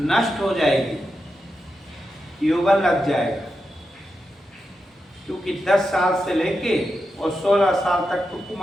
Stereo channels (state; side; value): normal; both; correlation 0.88